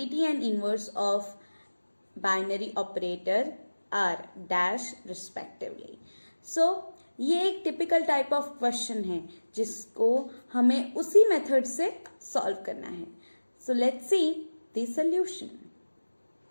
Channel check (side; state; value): both; inverted; correlation -1.00